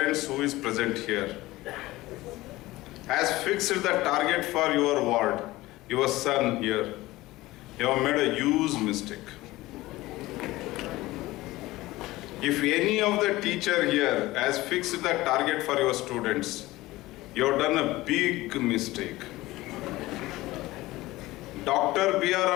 who is present here has fixed the target for your ward, your son here, you have made a huge mistake. If any of the teacher here has fixed the target for your students, you have done a big mistake. Dr.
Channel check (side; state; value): right; quieter; 18.4 dB